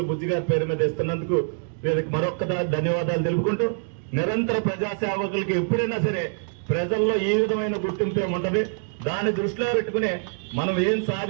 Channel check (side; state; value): left; silent; digital silence